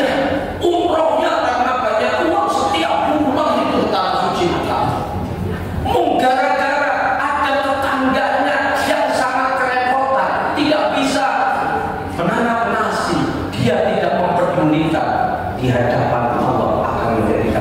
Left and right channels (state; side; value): identical; both; correlation 1.00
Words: umrohnya karena banyak uang setiap bulan itu tanah suci Mekah. Gara-gara ada tetangganya yang sangat kerepotan, tidak bisa menanam nasi, dia tidak memperdulikan, di hadapan Allah akan